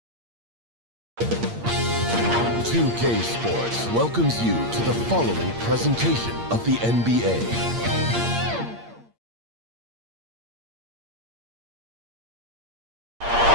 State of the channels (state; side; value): late; left; 8.7 ms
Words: K Sports welcomes you to the following presentation of the NBA.